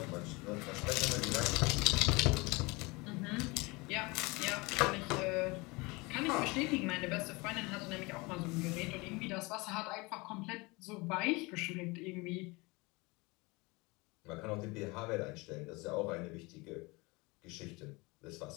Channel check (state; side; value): quieter; right; 25.2 dB